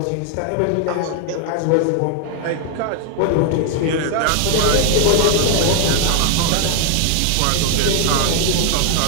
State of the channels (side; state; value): both; different; correlation 0.00